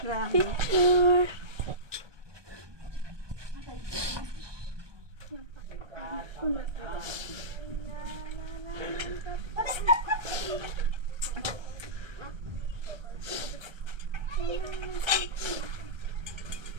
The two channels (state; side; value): late; left; 1.2 ms